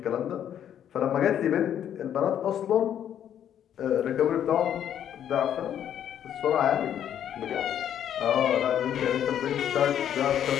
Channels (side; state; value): right; quieter; 9.9 dB